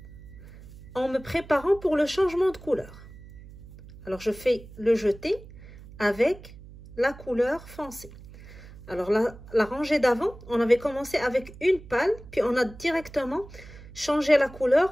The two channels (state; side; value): noise; right; hum, 18 dB below the sound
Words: en me préparant pour le changement de couleur. Alors je fais le jeté avec la couleur foncée. Alors la rangée d'avant, on avait commencé avec une pâle, puis on a directement changé la